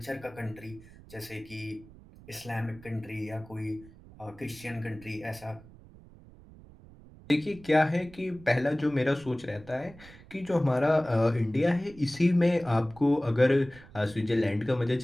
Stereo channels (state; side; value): noise; right; rumble, 21 dB below the sound